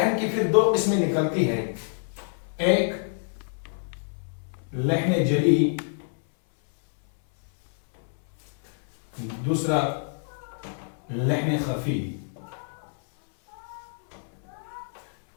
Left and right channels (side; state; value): right; silent; 60 dB below the other